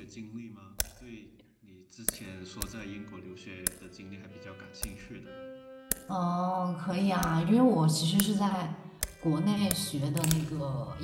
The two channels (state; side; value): identical; both; correlation 1.00